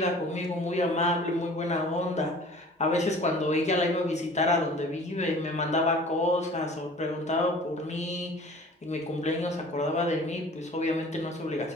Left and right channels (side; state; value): both; normal; correlation 0.46